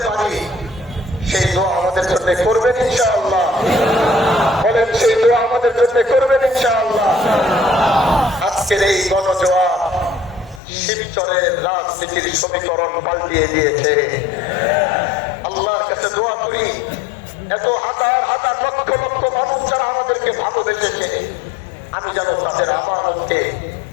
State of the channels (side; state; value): right; drops out; at 10.6 s